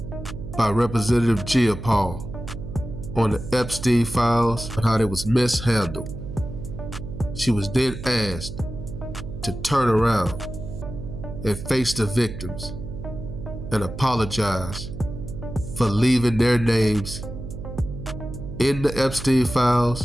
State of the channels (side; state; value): right; noise; hum, 9 dB below the sound